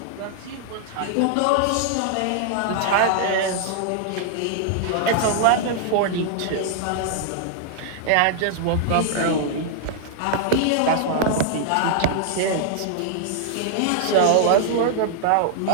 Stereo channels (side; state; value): both; different; correlation -0.01